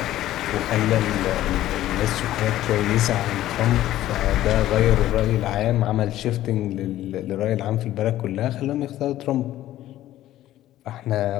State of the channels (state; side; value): quieter; right; 14.0 dB